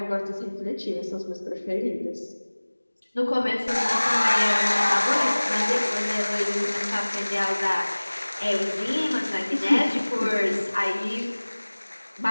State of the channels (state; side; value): inverted; both; correlation -1.00